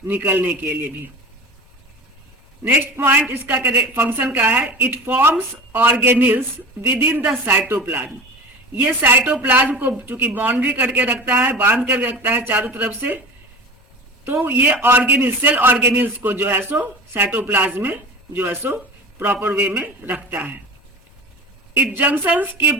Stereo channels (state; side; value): normal; both; correlation 0.34